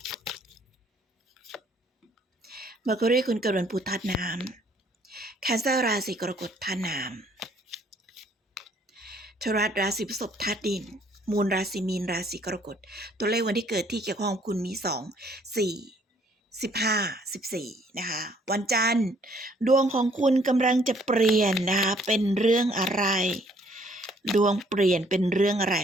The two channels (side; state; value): both; normal; correlation 0.63